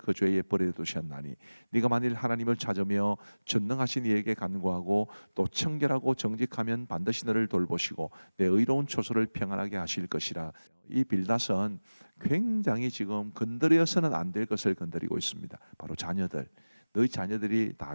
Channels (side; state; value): both; inverted; correlation -1.00